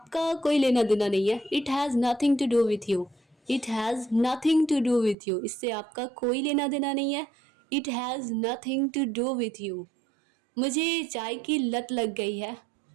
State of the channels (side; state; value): left; drops out; at 5.2 s